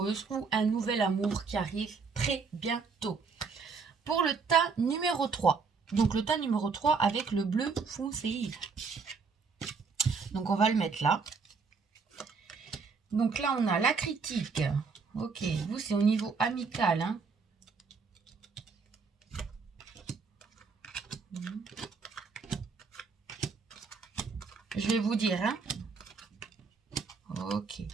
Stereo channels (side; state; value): left; quieter; 5.0 dB